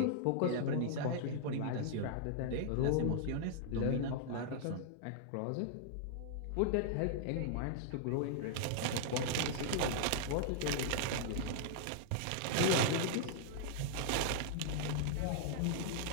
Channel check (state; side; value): different; both; correlation -0.01